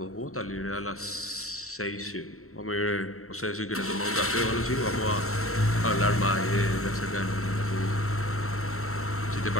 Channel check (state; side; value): late; right; 0.63 ms